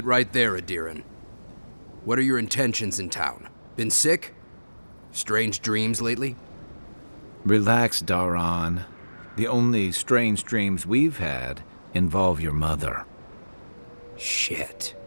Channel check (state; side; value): inverted; both; correlation -1.00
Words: right there, Adiran. What are your intentions in town? Been sick? Strange dreams lately? Relax, Daran. The only strange dreams we've had involve your mother. Shit.